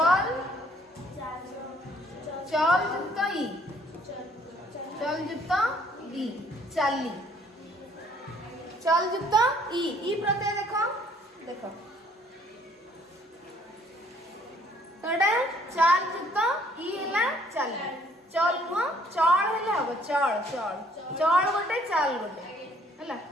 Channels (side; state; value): both; normal; correlation 0.61